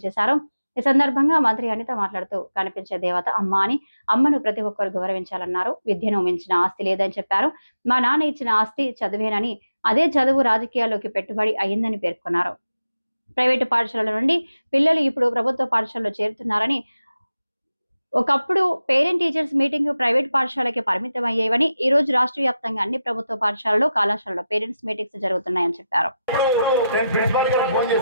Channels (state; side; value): inverted; both; correlation -0.91